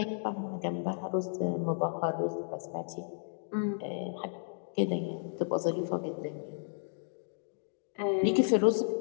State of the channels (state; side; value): silent; right; digital silence